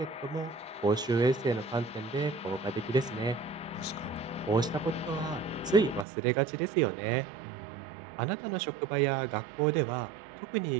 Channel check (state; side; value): drops out; left; at 6.1 s